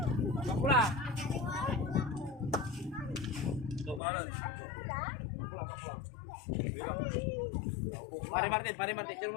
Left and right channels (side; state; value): right; drops out; at 4.0 s